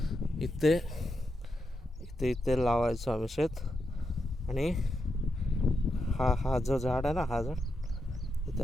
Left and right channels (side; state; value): both; normal; correlation 0.85